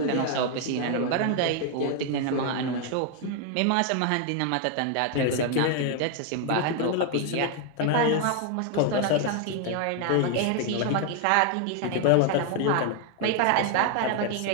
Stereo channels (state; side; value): different; both; correlation 0.00